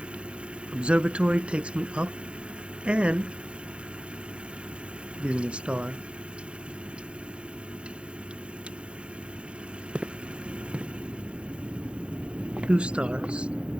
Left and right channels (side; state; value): left; late; 0.057 ms